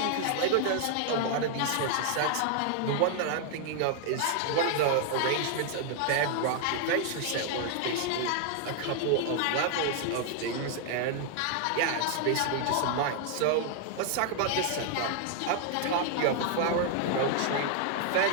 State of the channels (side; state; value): both; different; correlation 0.00